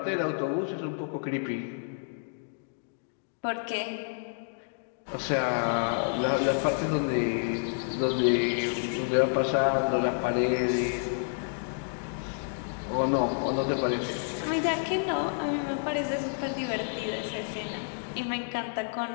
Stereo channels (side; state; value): right; silent; digital silence